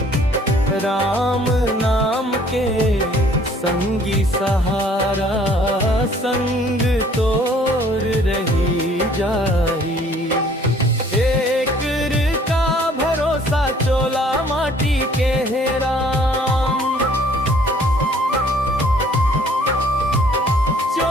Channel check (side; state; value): both; normal; correlation 0.58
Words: राम नाम के संगी सहारा, संग तोर रही जाही। एक का भरोसा चोला माटी के है राम,